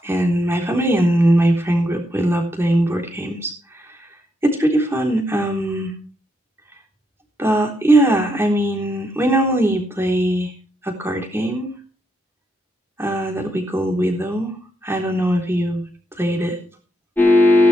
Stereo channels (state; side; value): normal; both; correlation 0.79